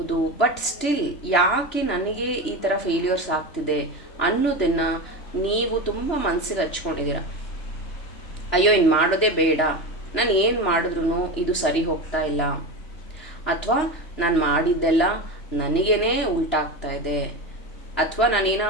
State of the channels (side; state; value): right; late; 3.0 ms